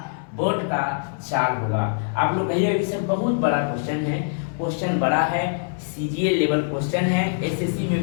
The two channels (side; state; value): right; silent; digital silence